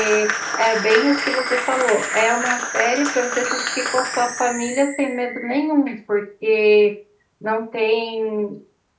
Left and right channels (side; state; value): both; identical; correlation 1.00